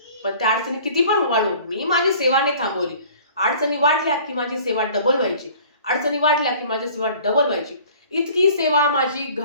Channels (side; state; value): both; inverted; correlation -0.49